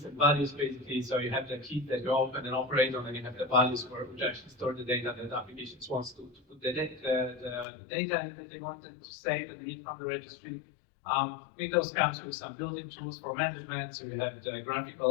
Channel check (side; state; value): right; drops out; at 7.7 s